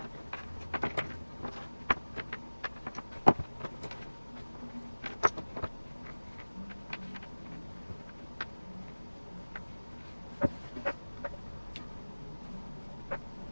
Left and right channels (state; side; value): inverted; both; correlation -1.00